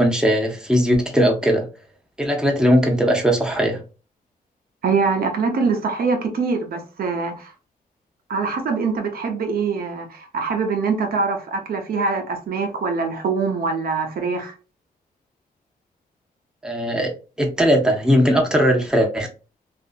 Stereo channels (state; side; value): normal; both; correlation 0.61